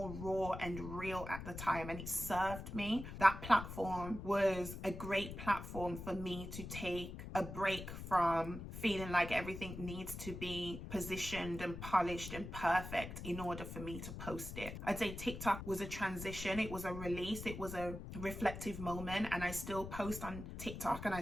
raw and real at the time, and it served me. That platform was a great platform for me to take a break from feeling like everything needs to be positioned and polished and perfect in order for me to post it. I'd say TikTok was a transition. It was a release. It was a reflective moment, and I still post on TikTok and I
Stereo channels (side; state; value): left; noise; rumble, 9 dB below the sound